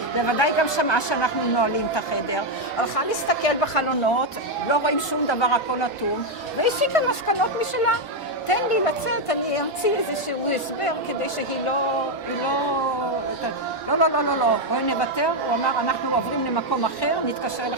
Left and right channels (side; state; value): both; normal; correlation 0.03